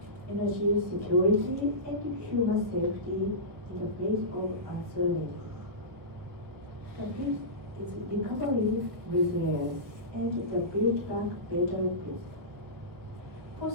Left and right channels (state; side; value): late; left; 1.7 ms